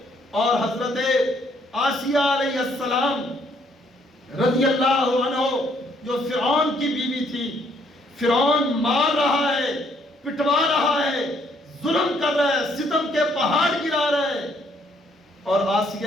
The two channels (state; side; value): normal; both; correlation 0.68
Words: اور حضرت آسیہ علیہ السلام رضی اللہ عنہ جو فرعون کی بیوی تھی، فرعون مار رہا ہے، پٹوا رہا ہے، ظلم کر رہا ہے، ستم کے پہاڑ گرا رہا ہے، اور